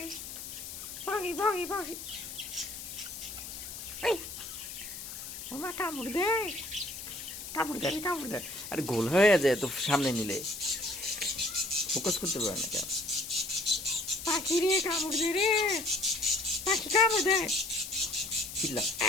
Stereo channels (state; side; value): noise; left; hiss, 9 dB below the sound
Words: পাখি পাখি পাখি এই ওমা কামড় দে কামড় দে। আরে গোল হয়ে যায় তো সামনে নিলে ফোকাস করতে পারে না কেন? পাখি রে কামড় দে রে পাখি কামড় দে চিল্লা